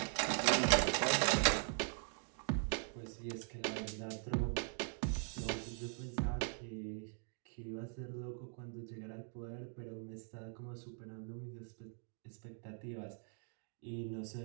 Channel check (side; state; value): left; silent; 50 dB below the other